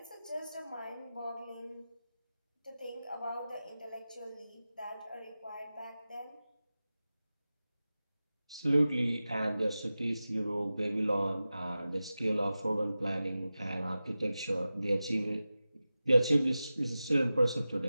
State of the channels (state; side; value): inverted; both; correlation -0.95